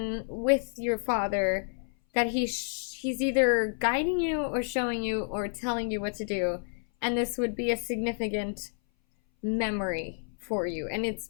with your father, that he's either guiding you or showing you or telling you what to do. And this would be a significant memory for you. And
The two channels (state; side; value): silent; right; 58 dB below the other